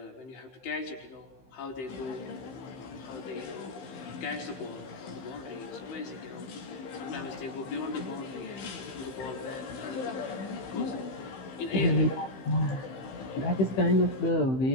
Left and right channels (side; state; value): right; late; 15 ms